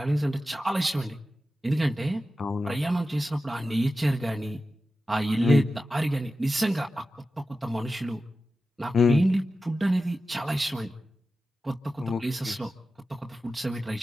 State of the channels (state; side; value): normal; both; correlation 0.93